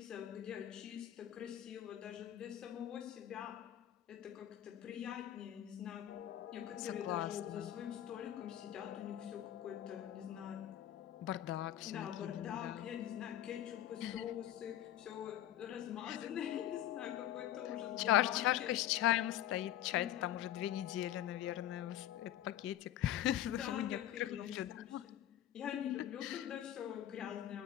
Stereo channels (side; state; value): right; quieter; 12.2 dB